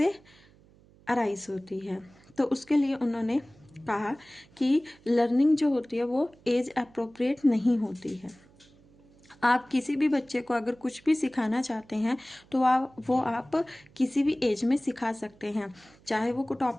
अराइज होती है। तो उसके लिए उन्होंने कहा कि लर्निंग जो होती है वो एज अप्रोप्रिएट नहीं होती है। आप किसी भी बच्चे को अगर कुछ भी सिखाना चाहते हैं तो आप किसी भी एज में सिखा सकते हैं, चाहे वो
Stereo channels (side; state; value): right; noise; hum, 28 dB below the sound